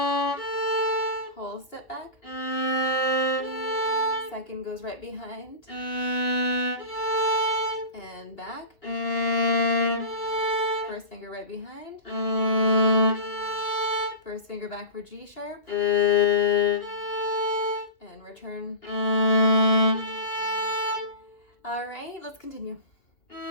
whole step back, second goes right behind, and back, first finger right behind, first finger back for G sharp, and return. All right, let's continue.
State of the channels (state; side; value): late; right; 2.8 ms